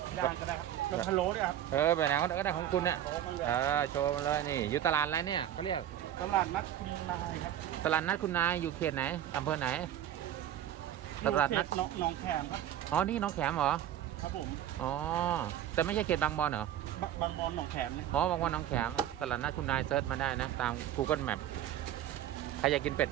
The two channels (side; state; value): left; quieter; 11.3 dB